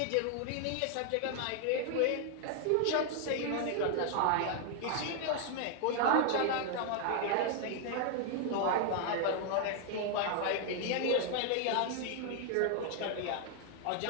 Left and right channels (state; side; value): different; both; correlation 0.00